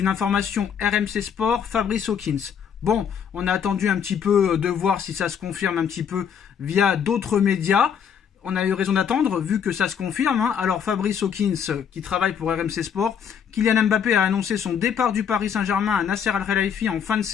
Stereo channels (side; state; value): right; quieter; 7.7 dB